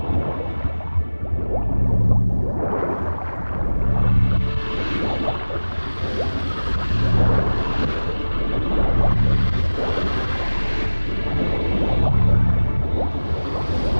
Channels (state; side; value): inverted; both; correlation -1.00